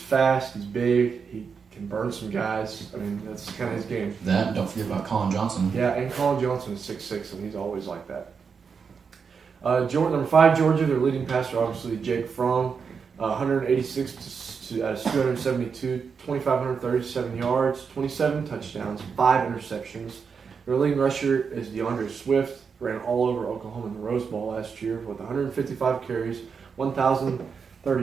He's big. He can burn some guys. I mean, that's kind of his game. That, don't forget about Colin Johnson. Yeah, and Colin Johnson is 6'6", and he's always like that. Number 5, Georgia, their leading passer, obviously, Jake Fromm, 186 out of 272, 2,537 yards, 27 touchdowns, 5 interceptions. Their leading rusher is DeAndre Swift, ran all over Oklahoma in the Rose Bowl last year with 155 carries,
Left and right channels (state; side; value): quieter; left; 5.9 dB